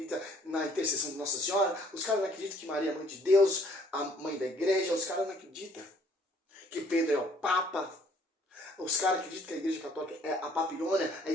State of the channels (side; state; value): both; normal; correlation 0.61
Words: na intercessão de Nossa Senhora, os caras não acreditam que Maria é mãe de Deus, a mãe da igreja, os caras não acreditam que Pedro é o Papa, os caras acreditam que a igreja católica é a Babilônia, a